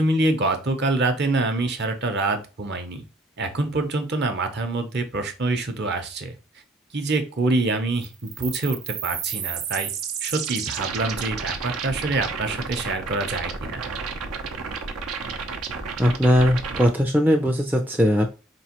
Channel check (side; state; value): both; normal; correlation 0.64